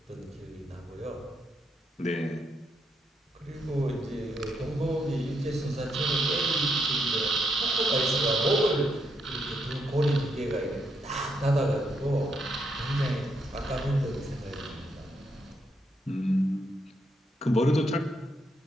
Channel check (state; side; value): normal; both; correlation 0.78